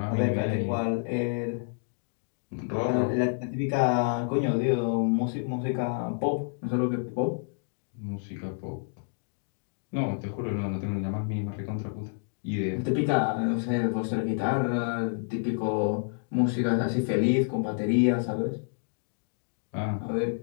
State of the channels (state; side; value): silent; right; digital silence